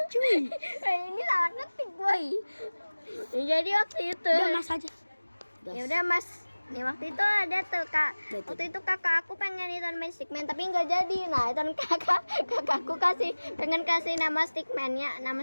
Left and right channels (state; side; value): inverted; both; correlation -1.00